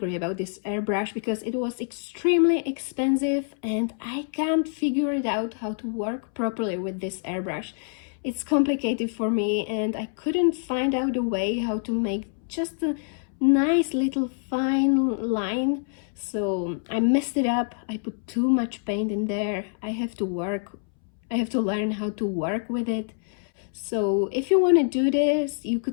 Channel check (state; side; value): silent; right; 61 dB below the other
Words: about this airbrush because it was extremely expensive and I can't figure it out how to work properly with this airbrush. It's complicated for me and I couldn't find out a way how to make just a nice little fine line, so I messed it up. I put too much paint in there. I have to learn how to work with it. So if you want to do this, you